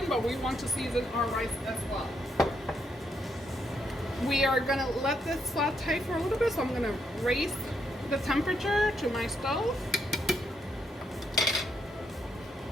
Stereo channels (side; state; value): both; normal; correlation 0.77